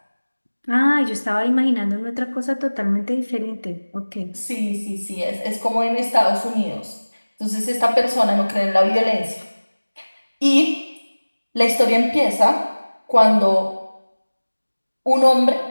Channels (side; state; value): both; inverted; correlation -1.00